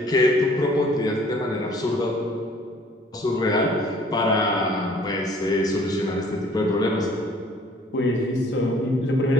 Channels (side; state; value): both; normal; correlation 0.56